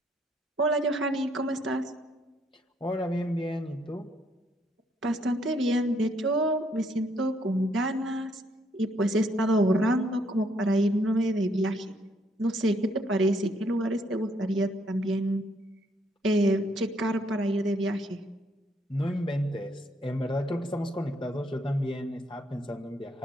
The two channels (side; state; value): both; normal; correlation 0.70